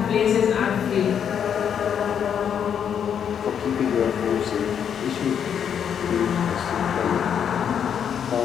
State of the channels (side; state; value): right; quieter; 8.2 dB